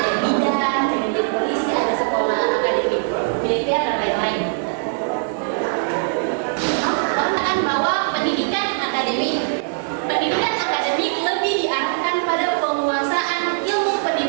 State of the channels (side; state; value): left; silent; digital silence